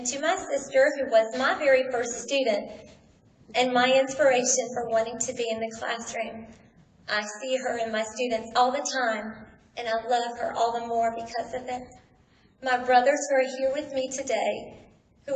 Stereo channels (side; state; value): both; identical; correlation 1.00